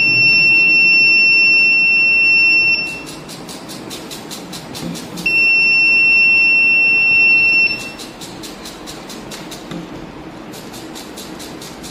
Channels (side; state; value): both; identical; correlation 1.00